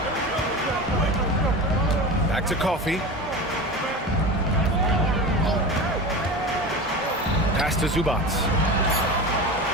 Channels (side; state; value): both; normal; correlation 0.28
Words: Back to Coffey. Pass to Zubac.